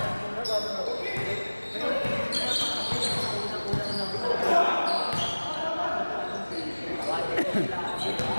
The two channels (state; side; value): inverted; both; correlation -1.00